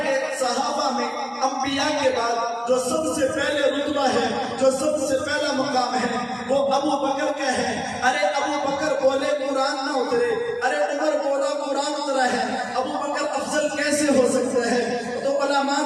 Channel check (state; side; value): identical; both; correlation 1.00